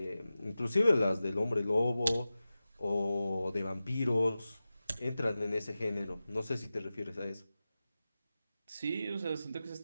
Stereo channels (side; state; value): both; inverted; correlation -0.95